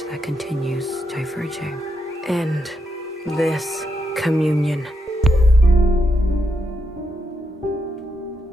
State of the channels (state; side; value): normal; both; correlation 0.82